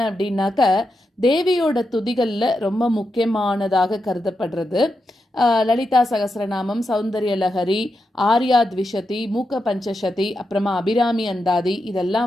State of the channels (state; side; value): normal; both; correlation 0.86